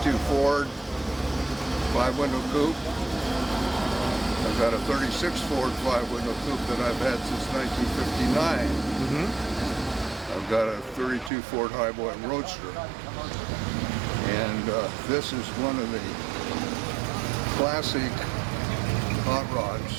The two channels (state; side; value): drops out; left; at 11.3 s